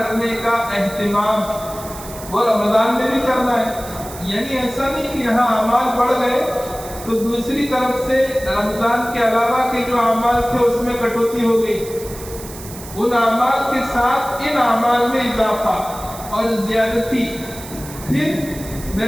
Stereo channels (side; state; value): right; noise; hiss, 15 dB below the sound